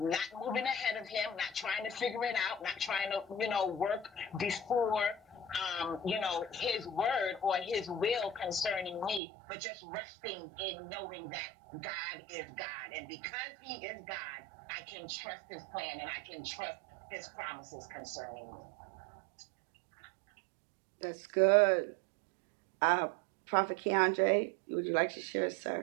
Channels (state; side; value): drops out; left; at 9.2 s